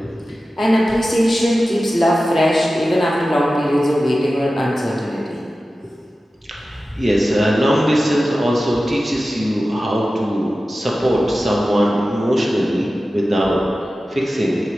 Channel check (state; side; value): normal; both; correlation 0.95